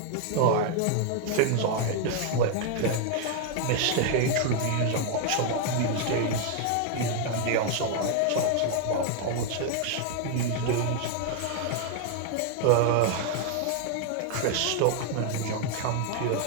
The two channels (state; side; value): different; both; correlation 0.00